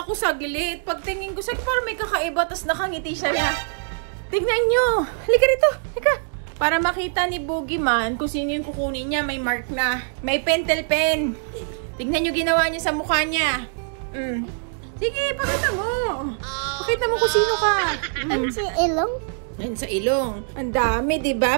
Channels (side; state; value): left; silent; digital silence